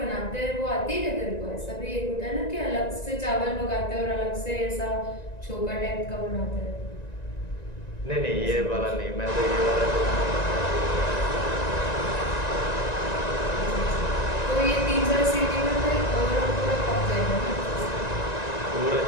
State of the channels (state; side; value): late; right; 1.9 ms